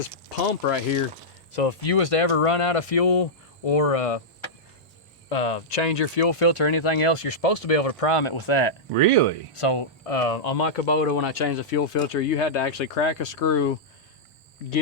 pump right here. So if you was to ever run out of fuel or change your fuel filter or anything else, you're supposed to be able to prime it with that. Really? So on my Kubota, when I changed the fuel filter, you had to actually crack a screw,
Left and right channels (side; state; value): both; normal; correlation -0.11